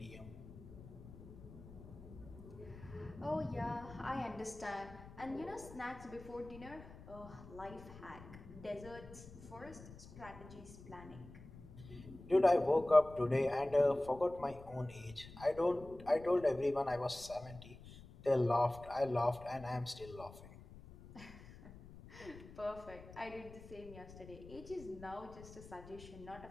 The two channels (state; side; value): noise; left; rumble, 16 dB below the sound